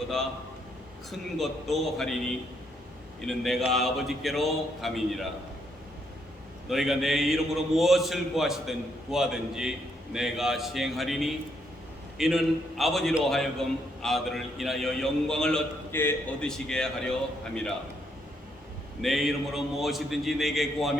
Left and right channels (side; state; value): both; normal; correlation 0.74